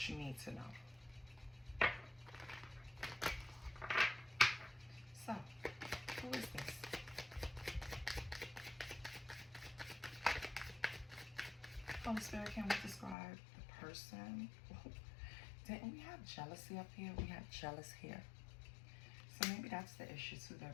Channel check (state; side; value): drops out; right; at 13.2 s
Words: you need to know. So, who is this? Holy Spirit, can we describe the person? Didn't we have jealousy up here? We had jealous here. So maybe that's the issue too. They're